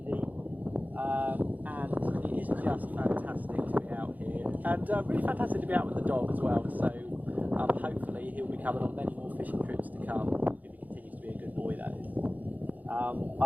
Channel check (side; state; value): left; late; 0.080 ms